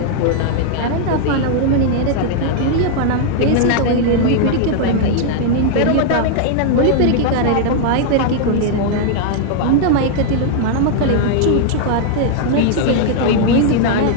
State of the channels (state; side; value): different; both; correlation 0.00